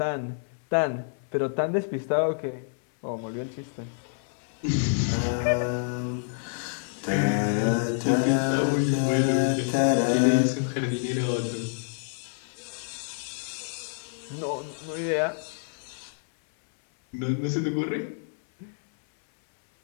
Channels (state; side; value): silent; right; 60 dB below the other